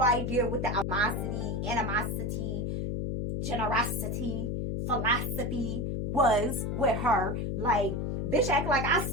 idea what the animosity, generosity, philosophy was with her. Like, bitch act like I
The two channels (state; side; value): noise; left; hum, 1 dB below the sound